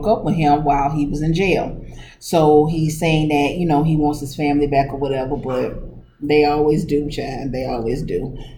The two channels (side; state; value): both; identical; correlation 1.00